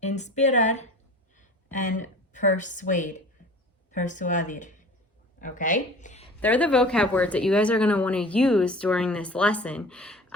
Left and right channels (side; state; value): both; normal; correlation 0.42